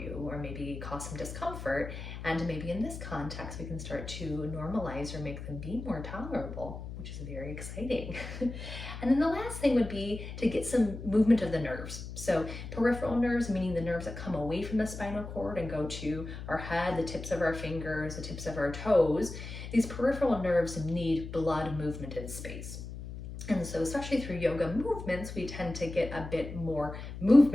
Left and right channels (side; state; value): left; noise; hum, 9 dB below the sound